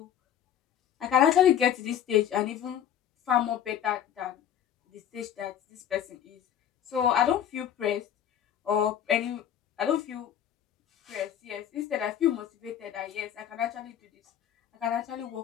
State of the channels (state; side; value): quieter; right; 9.9 dB